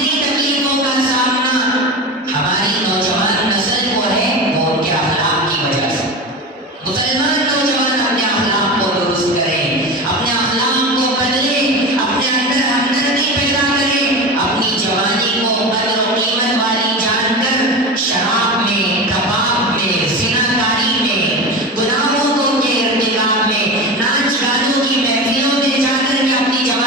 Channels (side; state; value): both; normal; correlation 0.26